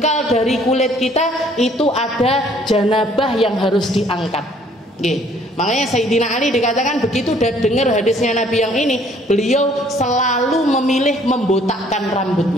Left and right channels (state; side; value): normal; both; correlation 0.60